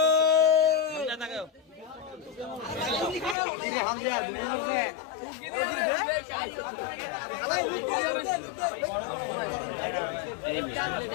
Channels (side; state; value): right; drops out; at 3.4 s